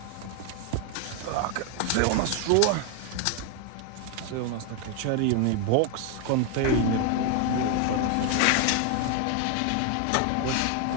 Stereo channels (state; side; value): different; both; correlation 0.01